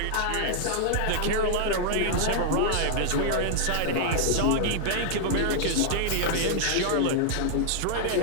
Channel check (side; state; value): both; different; correlation -0.01